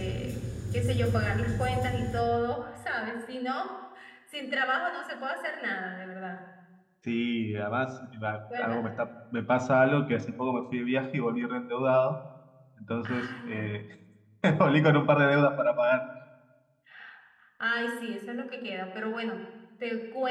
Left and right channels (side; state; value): both; identical; correlation 1.00